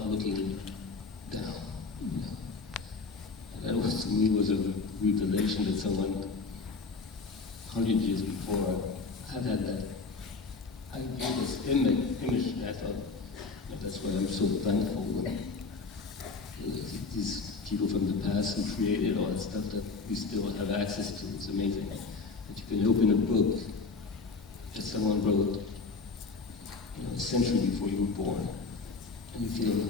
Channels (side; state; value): right; quieter; 4.2 dB